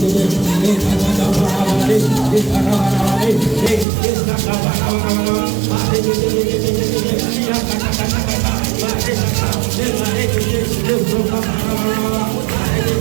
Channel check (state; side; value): drops out; left; at 3.9 s